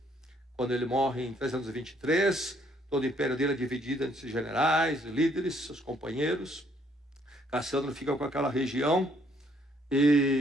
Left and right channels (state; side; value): normal; both; correlation 0.67